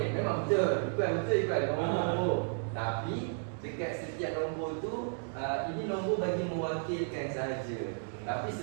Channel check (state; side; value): silent; left; digital silence